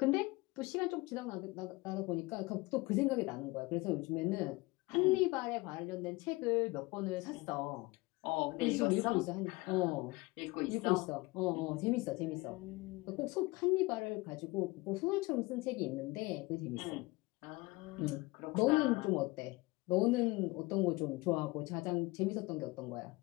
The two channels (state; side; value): quieter; right; 22.8 dB